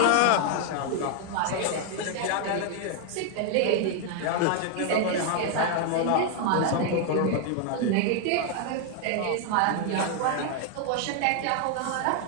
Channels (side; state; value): both; different; correlation 0.00